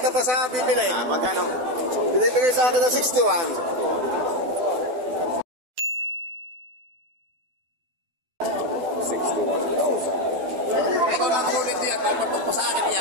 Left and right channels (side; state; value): left; late; 12 ms